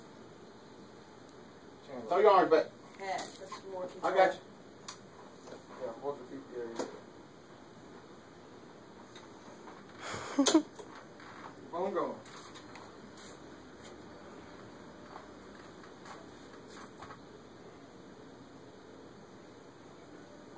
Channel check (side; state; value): both; identical; correlation 1.00